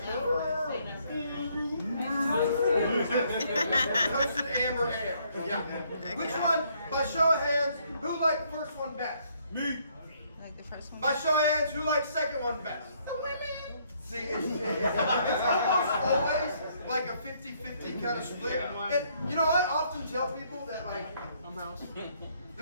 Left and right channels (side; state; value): both; inverted; correlation -0.68